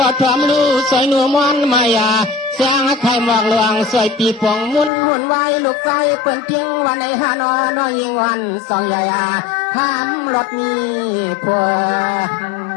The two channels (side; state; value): right; drops out; at 4.9 s